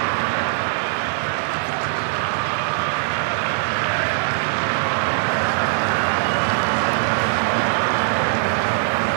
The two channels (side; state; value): left; silent; digital silence